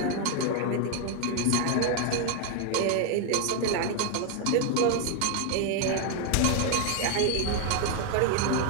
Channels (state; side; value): different; both; correlation 0.00